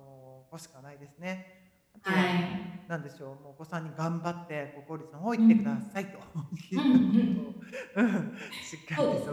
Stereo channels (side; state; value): both; identical; correlation 1.00